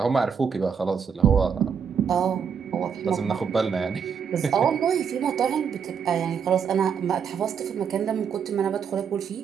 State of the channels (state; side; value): quieter; left; 6.9 dB